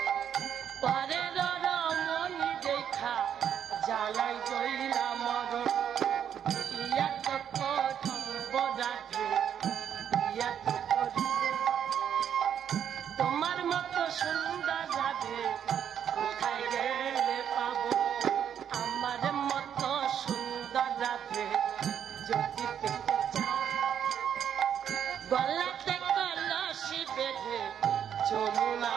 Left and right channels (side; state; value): left; quieter; 8.9 dB